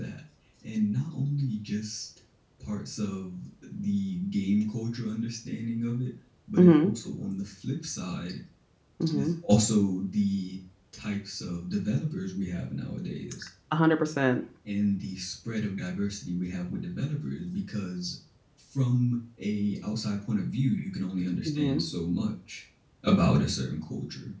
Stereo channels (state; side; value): identical; both; correlation 1.00